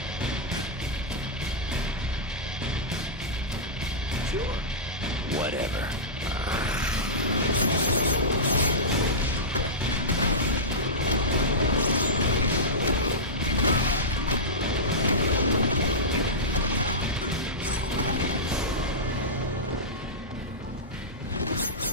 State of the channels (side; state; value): both; normal; correlation -0.15